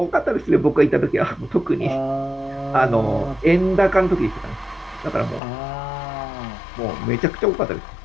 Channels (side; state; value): right; drops out; at 5.4 s